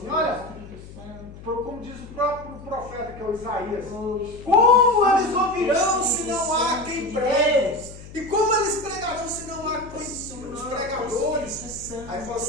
olha, como diz o próprio profeta, que é o Isaías, como eles ouvirão se não há quem pregue? E como eles pregarão se não há os pregadores? Aí fala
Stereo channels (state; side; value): noise; left; hum, 16 dB below the sound